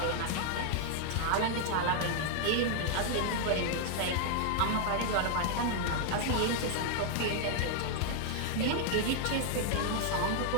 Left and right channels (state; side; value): different; both; correlation 0.00